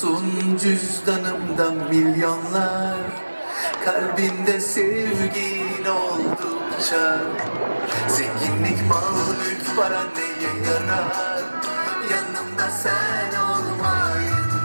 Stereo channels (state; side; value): inverted; both; correlation -1.00